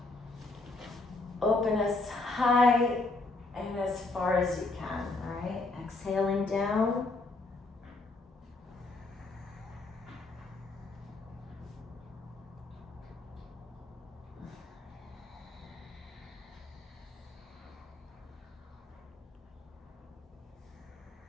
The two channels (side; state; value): right; quieter; 3.3 dB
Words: Open as high and as far as you can, all right? Exhaling down.